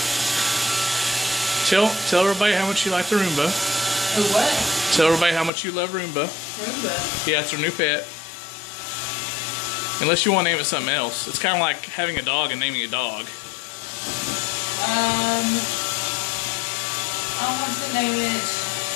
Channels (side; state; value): right; drops out; at 5.5 s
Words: Tell everybody how much you like the Roomba. Oh, what? Tell everybody how much you love Roomba. Roomba? Yeah, it's our new pet. Unless you want to name it something else. It's kind of like having a dog and naming a dog. I want to name it